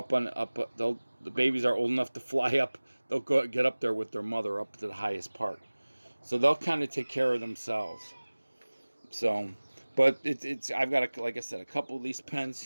the babies are old enough to fly up, they'll get up there with their mother up to the highest part. So they'll kind of take care of themselves. So. But I've got, like I said, a couple of these pens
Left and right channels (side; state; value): both; inverted; correlation -1.00